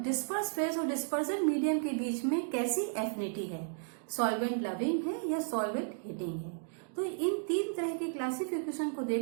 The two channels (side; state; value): left; silent; digital silence